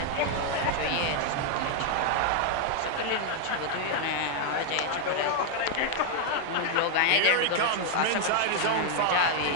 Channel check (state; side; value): different; both; correlation 0.00